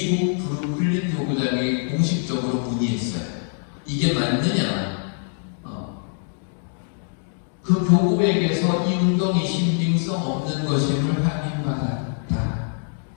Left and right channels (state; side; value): silent; right; 63 dB below the other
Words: 브루클린 교구장에 공식적으로 문의했어요. 이게 맞느냐? 그 교구에게서 이 운동이 신빙성 없는 것임을 확인받았다